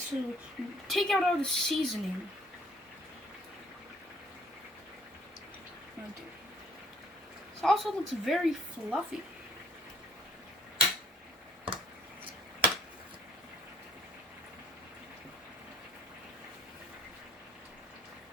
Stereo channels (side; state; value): both; normal; correlation 0.60